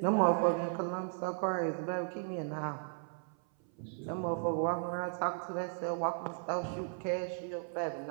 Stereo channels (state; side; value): silent; left; 54 dB below the other